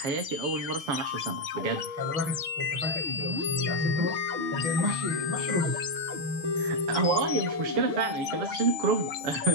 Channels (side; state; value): left; late; 6.8 ms